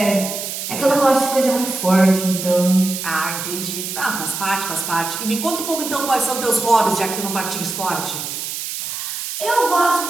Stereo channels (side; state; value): right; noise; hiss, 6 dB below the sound